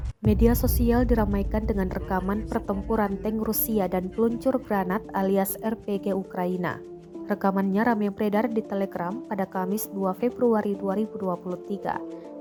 Media sosial diramaikan dengan rekaman pertempuran tank Rusia dan peluncur granat alias RPG Ukraina. Rekamannya ramai beredar di Telegram pada Kamis 2 Februari 2023,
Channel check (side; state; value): both; identical; correlation 1.00